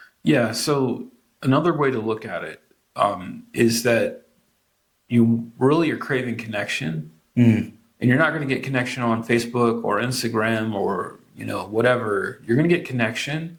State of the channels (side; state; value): both; identical; correlation 1.00